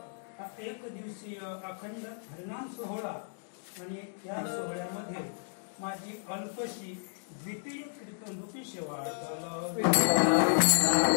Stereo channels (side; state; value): right; silent; digital silence